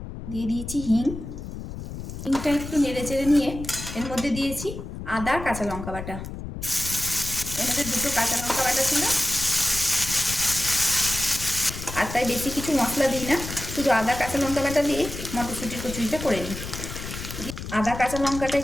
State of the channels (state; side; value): noise; left; rumble, 9 dB below the sound